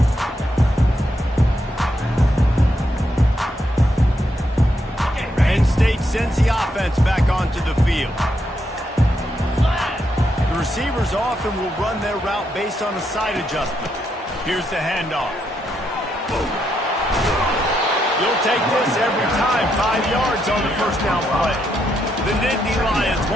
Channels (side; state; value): both; normal; correlation 0.79